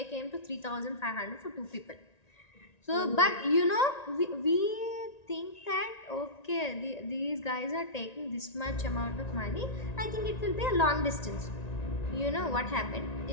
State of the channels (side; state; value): right; late; 1.9 ms